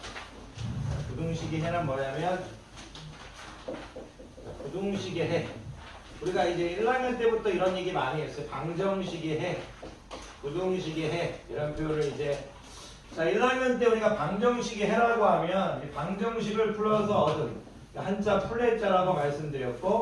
부등식의 해는 뭐냐면 부등식의 해. 우리가 이제 1학년 때부터 이런 얘기 많이 했어요. 방정식의 해, 부등식의 해 이런 표현을 이제 자 1학년 때 우리가 방정식의 해라고 하면 방정식을 풀어서 얻은 한자 플랫자라고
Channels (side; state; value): both; identical; correlation 1.00